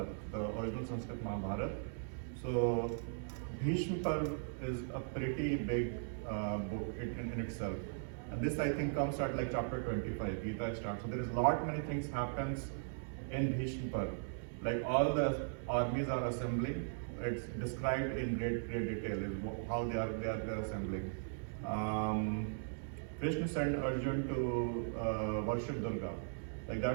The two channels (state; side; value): silent; left; digital silence